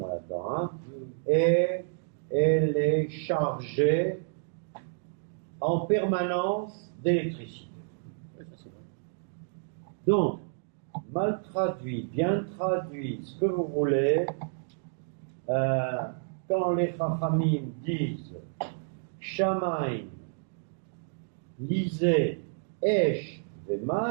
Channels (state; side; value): silent; left; digital silence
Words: là-dedans, hein, et elle est chargée en permanence d'électricité. Donc, mal traduit, bien traduit, ce que vous voulez, quand les Chachamim disent Shamaim, lisez Esh